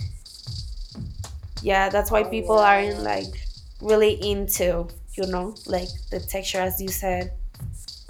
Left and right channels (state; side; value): identical; both; correlation 1.00